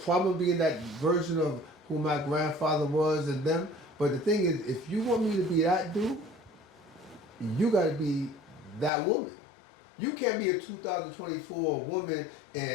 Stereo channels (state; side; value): drops out; right; at 8.9 s